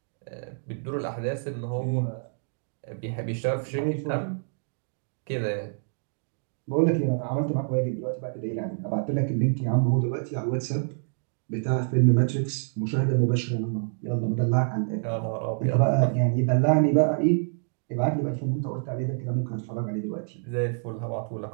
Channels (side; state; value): left; silent; digital silence